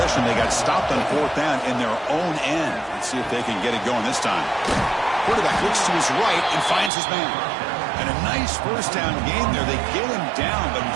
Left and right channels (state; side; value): drops out; left; at 6.9 s